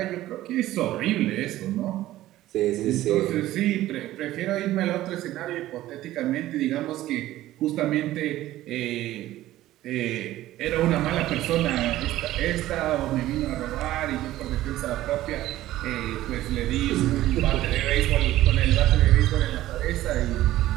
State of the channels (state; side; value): quieter; left; 15.0 dB